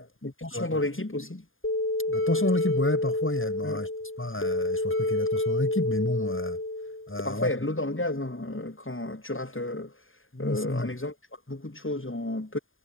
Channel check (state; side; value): late; right; 0.59 ms